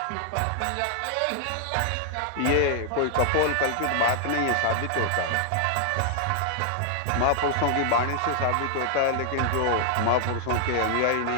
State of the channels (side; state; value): both; different; correlation 0.00